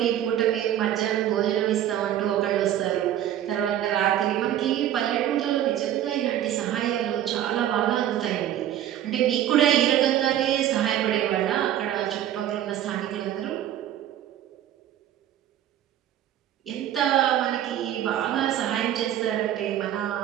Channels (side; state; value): left; quieter; 11.6 dB